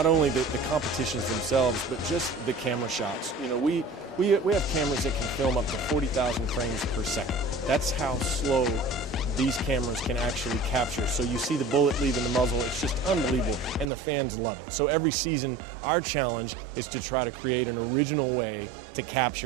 only the competitions themselves, but just the camera shots. You know, we have cameras that can film up to 40,000 frames per second. That's how slow these cameras can actually capture. So you see the bullet leaving the muzzle, it's just unbelievable, and the fans love it. So every season, our challenge is to try to create an original way to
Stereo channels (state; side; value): drops out; left; at 13.9 s